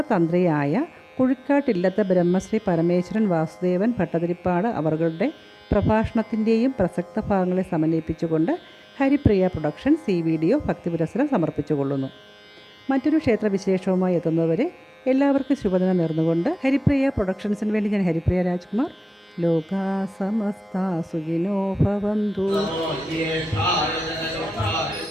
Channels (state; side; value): normal; both; correlation 0.97